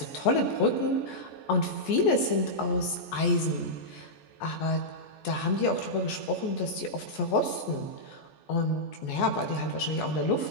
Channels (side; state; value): right; late; 14 ms